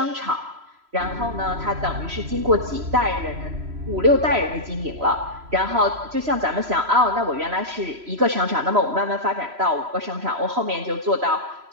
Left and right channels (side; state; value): left; late; 3.0 ms